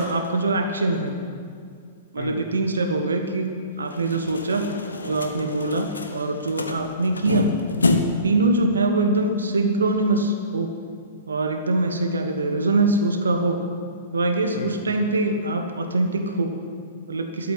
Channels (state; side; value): inverted; both; correlation -0.49